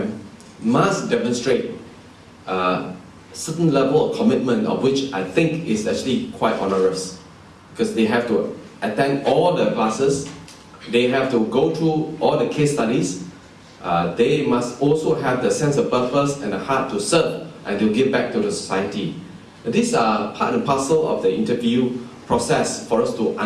must demonstrate a certain level of commitment, of which I think is actually quite onerous. Because they have to attend all the classes, they have to go through all the case studies, they must also have the sense of purpose and the heart to serve and to give back to the society. These are part and parcel of the interview process for us to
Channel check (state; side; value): identical; both; correlation 1.00